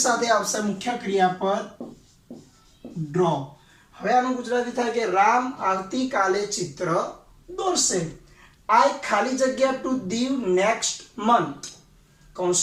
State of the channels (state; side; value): identical; both; correlation 1.00